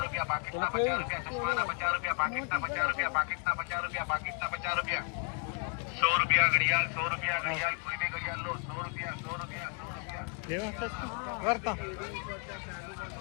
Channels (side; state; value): right; quieter; 35.8 dB